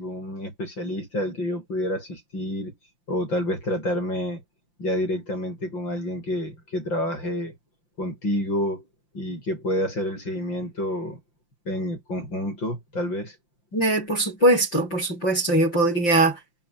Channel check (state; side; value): late; right; 5.8 ms